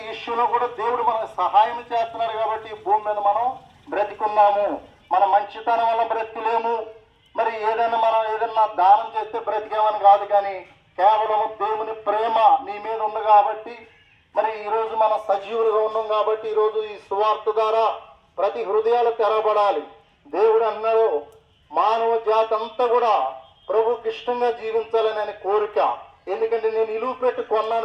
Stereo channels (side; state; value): both; identical; correlation 1.00